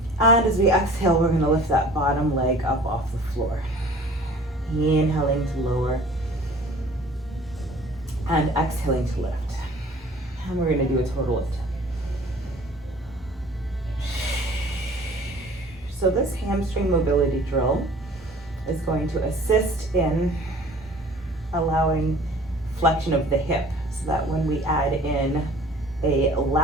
And as we exhale, we're going to lift that bottom leg up off the floor. Inhaling to lower. And exhaling to lift. And we're going to do a total of 10. So this hamstring mobility drill is going to assist in allowing flexion of the hip, so that when we add in a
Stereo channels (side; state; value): both; normal; correlation 0.49